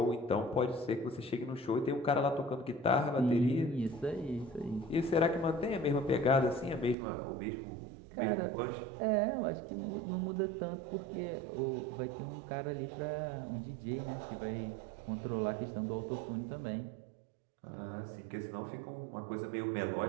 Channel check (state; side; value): drops out; left; at 7.0 s